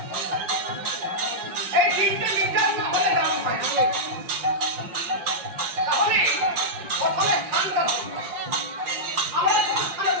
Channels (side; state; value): left; late; 5.7 ms